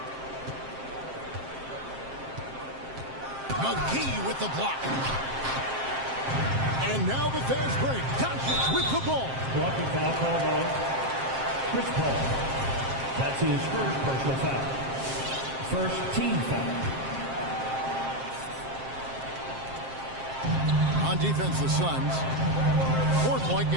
McGee with the block. And now the fast break. Doncic with the ball. Blocking foul called on Chris Paul. That's his first personal foul. First team foul. On defense, the Suns. 4-point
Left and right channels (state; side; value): late; left; 7.5 ms